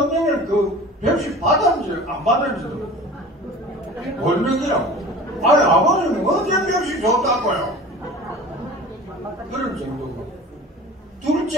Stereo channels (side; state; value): both; normal; correlation 0.40